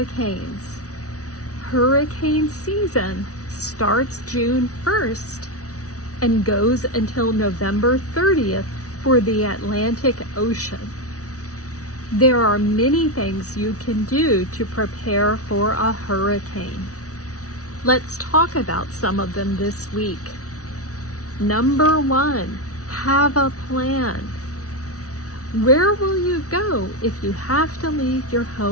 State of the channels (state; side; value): late; right; 0.66 ms